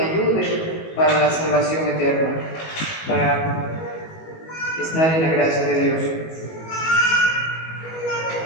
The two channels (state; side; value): late; right; 19 ms